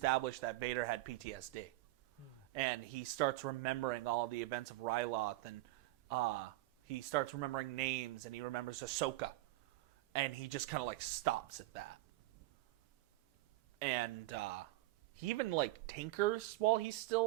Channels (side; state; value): left; quieter; 18.6 dB